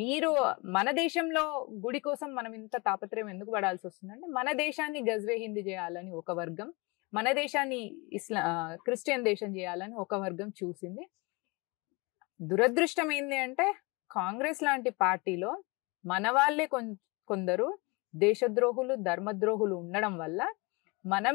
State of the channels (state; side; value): quieter; right; 27.5 dB